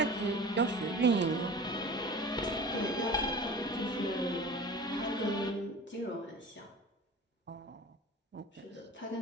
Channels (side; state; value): both; normal; correlation 0.38